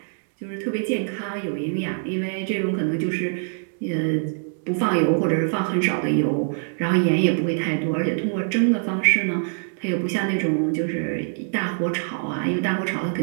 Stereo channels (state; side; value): silent; left; digital silence